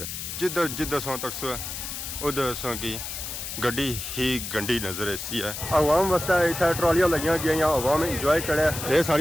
जिधर जिधर सा तक सो उधर सा की गड्डी ही गंडी नजर ऐसी है। अवाम वास्ते इतना ट्रॉलियां लगियां गई अवाम इंजॉय करे ये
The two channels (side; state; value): left; noise; hiss, 7 dB below the sound